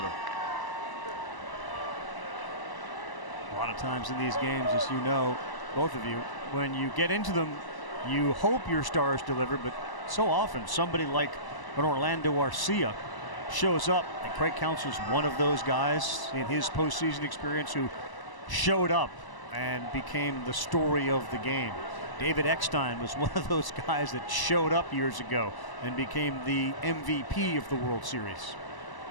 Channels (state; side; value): late; right; 1.0 ms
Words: A lot of times in these games, as you know, both of you, when you get into them, you hope your stars deliver, but so often somebody like an Orlando Arcia shows up, and Craig Counsell's one of those guys in his postseason experience who showed up and became the story of the game. David Eckstein was one of those guys that showed up years ago and became the MVP of the World Series.